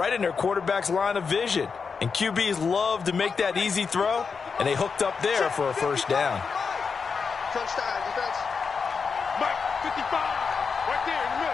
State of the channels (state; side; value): quieter; right; 5.4 dB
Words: in their quarterback's line of vision. And QBs love to make that easy throw, and they hooked up there for a 1st down. Touchdown, defense. Mike, 55, right there in the